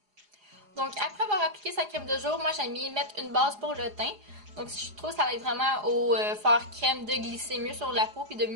Donc après avoir appliqué sa crème de jour, moi j'aime bien mettre une base pour le teint. Donc je trouve que ça aide vraiment au faire crème de glisser mieux sur la peau puis de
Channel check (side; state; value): left; late; 4.8 ms